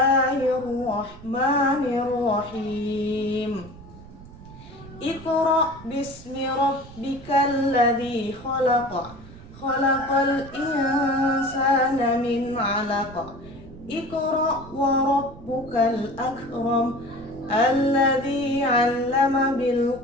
Iqra bismi rabbikal ladzi khalaq. Khalaqal insana min 'alaq. Iqra wa rabbukal akram. Alladzi 'allama bil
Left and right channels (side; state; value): right; noise; rumble, 18 dB below the sound